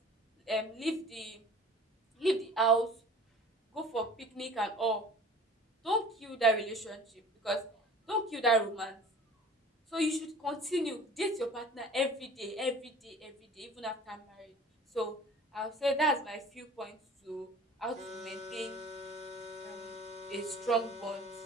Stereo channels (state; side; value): normal; both; correlation 0.45